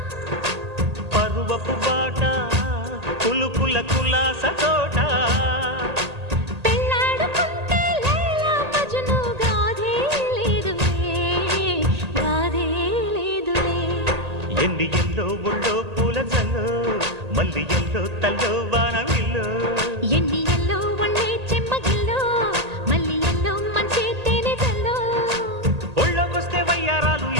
పరువపు బాట కులుకుల కులాస తోట పెళ్ళాడుకుంటే లైలా మజ్ను గాథే లేదులే ఎన్ని ఎల్లో ఒళ్ళో పూల జల్లో మల్లి ఎల్లో తల్లో వానవిల్లో ఎన్ని ఎల్లో ఒళ్ళే చెమ్మగిల్లో మల్లి ఎల్లో మంచి తేనె జల్లో ఒళ్ళోకొస్తే వయ్యారాలు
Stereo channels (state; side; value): late; left; 1.8 ms